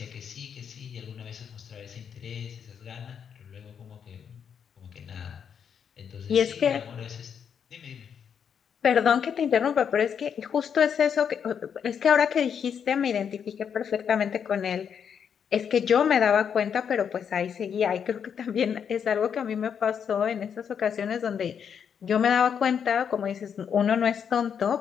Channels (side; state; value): right; quieter; 7.5 dB